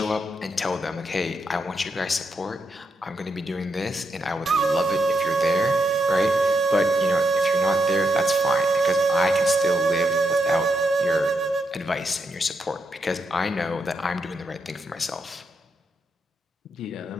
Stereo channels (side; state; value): both; normal; correlation 0.82